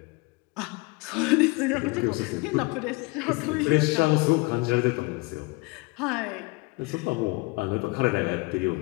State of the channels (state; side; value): quieter; right; 26.2 dB